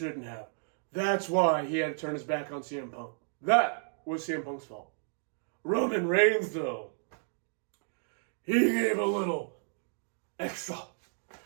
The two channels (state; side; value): silent; left; digital silence